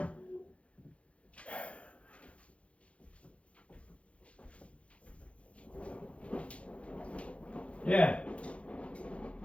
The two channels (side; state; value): right; late; 0.062 ms